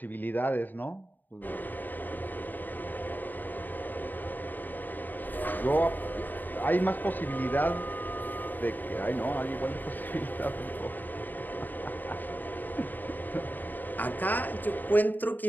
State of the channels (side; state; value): right; late; 0.088 ms